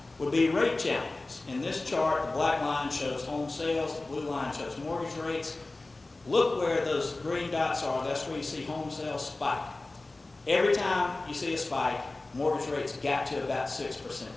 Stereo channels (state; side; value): quieter; right; 3.1 dB